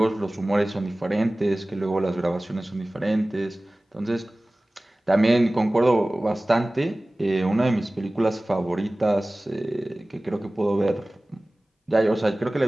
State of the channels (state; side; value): normal; both; correlation 0.98